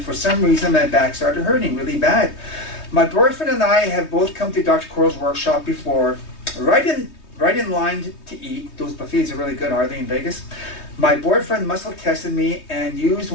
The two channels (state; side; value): late; right; 3.2 ms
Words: for some reason my back started hurting really bad. My boyfriend and I have both come to Dr. KOROL's workshop before, right in line to eat. Those buffets are really good, are they, in Vegas? My boyfriend muscle tested me and used